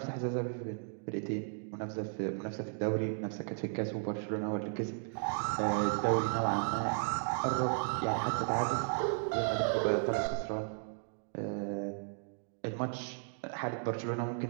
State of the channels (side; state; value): left; silent; digital silence